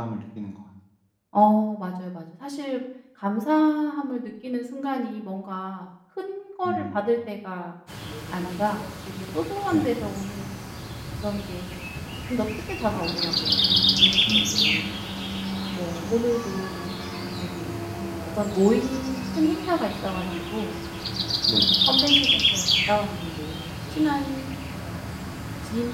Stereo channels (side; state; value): both; identical; correlation 1.00